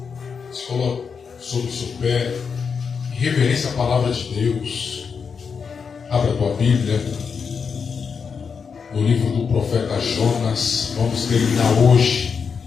se coloque sobre o seu pé em reverência à palavra de Deus. Abra a tua Bíblia no livro do profeta Jonas. Vamos terminar hoje,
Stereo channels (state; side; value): quieter; right; 6.0 dB